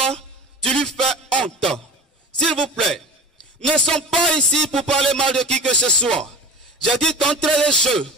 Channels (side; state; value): both; normal; correlation 0.35